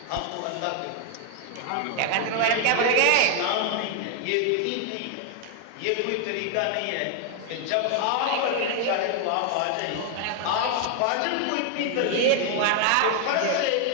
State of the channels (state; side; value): different; both; correlation 0.00